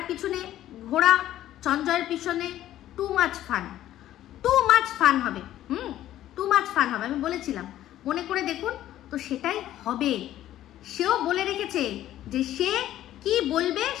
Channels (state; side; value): quieter; right; 13.0 dB